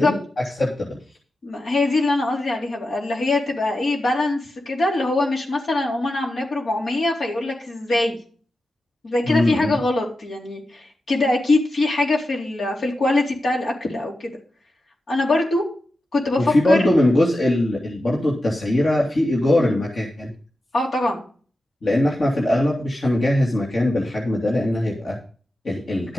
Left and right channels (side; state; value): both; normal; correlation 0.91